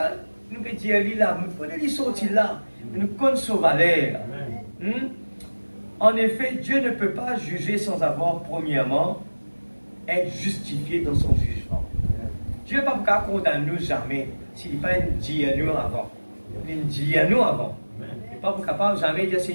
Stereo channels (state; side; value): inverted; both; correlation -1.00